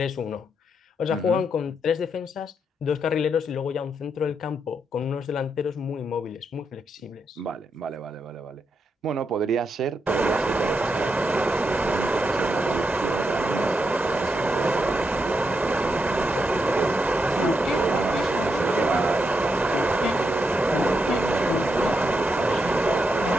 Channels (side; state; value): both; normal; correlation 0.82